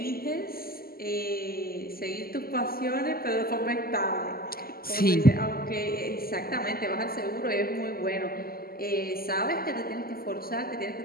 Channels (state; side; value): late; right; 0.43 ms